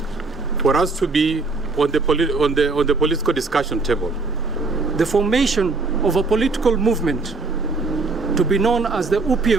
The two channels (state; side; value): quieter; left; 3.8 dB